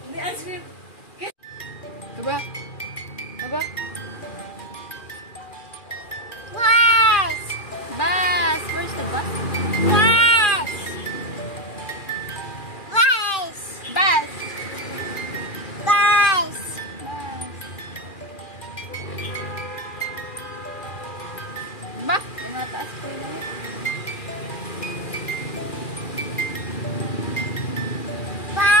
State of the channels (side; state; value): right; late; 2.4 ms